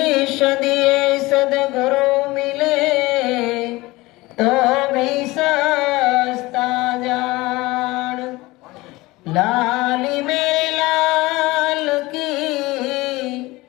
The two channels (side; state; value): right; quieter; 20.7 dB